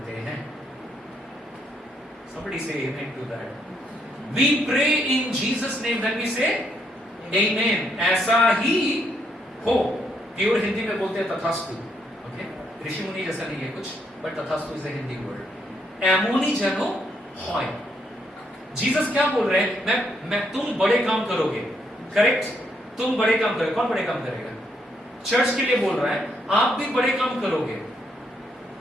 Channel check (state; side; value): normal; both; correlation 0.75